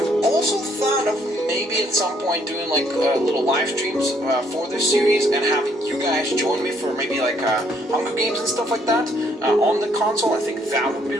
also thought of maybe at some point doing like little live streams for this series and having you guys join me for maybe like Hunger Games and stuff like that on the console. I think that would be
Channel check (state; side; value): normal; both; correlation 0.67